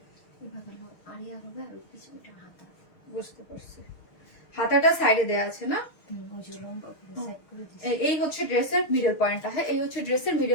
এভাবে আরিয়া হবে, আর পিছনটা হাতা। বুঝতে পারছি, হাতাটা সাইডে দেওয়া আছে না? ওই যে লম্বা করে সাইড করে দিছি। এই হচ্ছে ড্রেসের মিডল পয়েন্টটা। হ্যাঁ এই হচ্ছে ড্রেসের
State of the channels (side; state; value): right; late; 6.4 ms